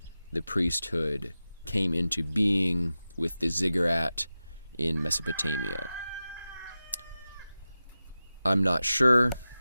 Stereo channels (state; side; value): inverted; both; correlation -0.94